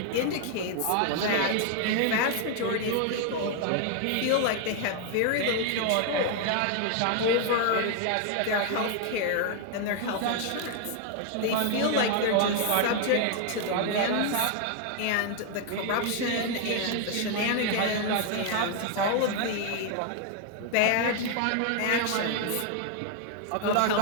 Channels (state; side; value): different; both; correlation 0.00